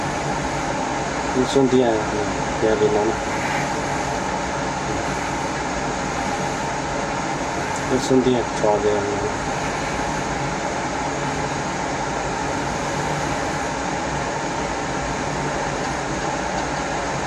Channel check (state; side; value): identical; both; correlation 1.00